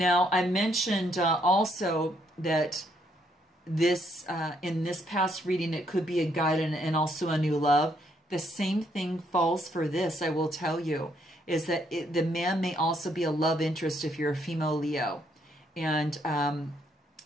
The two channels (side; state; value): both; normal; correlation 0.72